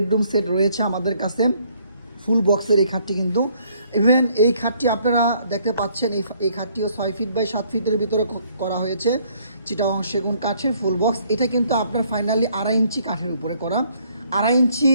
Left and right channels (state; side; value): inverted; both; correlation -0.65